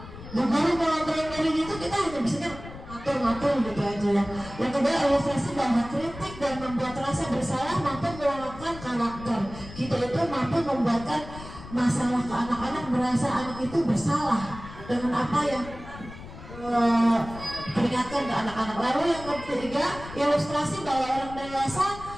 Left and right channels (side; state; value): left; noise; rumble, 14 dB below the sound